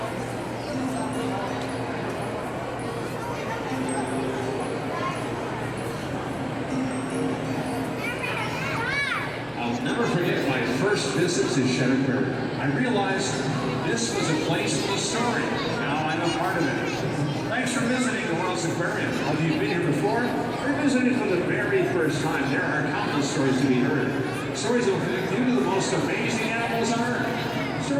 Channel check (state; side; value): identical; both; correlation 1.00